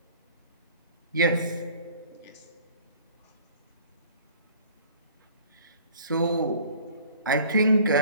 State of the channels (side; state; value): both; inverted; correlation -0.50